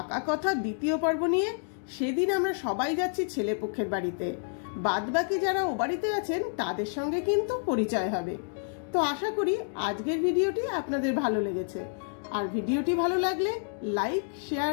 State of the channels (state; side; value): silent; right; 59 dB below the other